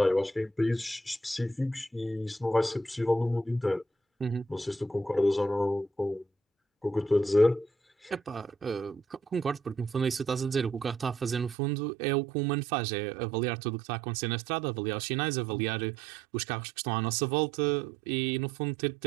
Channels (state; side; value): drops out; left; at 11.6 s